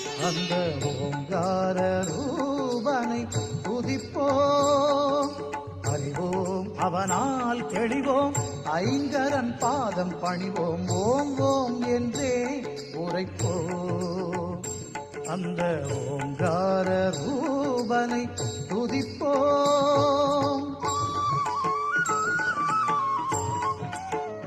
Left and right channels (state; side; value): identical; both; correlation 1.00